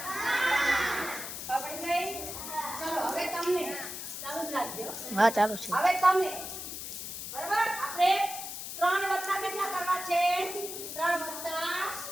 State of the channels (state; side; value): noise; left; hiss, 7 dB below the sound